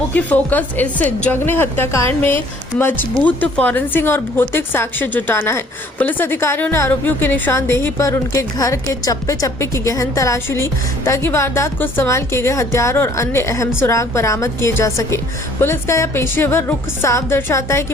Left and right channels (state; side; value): normal; both; correlation 0.58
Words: फोकस इस जघन्य हत्याकांड में मजबूत फॉरेंसिक और भौतिक साक्ष्य जुटाना है। पुलिस अधिकारियों ने आरोपियों की निशानदेही पर उनके घर के चप्पे चप्पे की गहन तलाशी ली ताकि वारदात को इस्तेमाल किए गए हथियार और अन्य अहम सुराग बरामद किए जा सके। पुलिस का यह पेशेवर रुख साफ दर्शाता है कि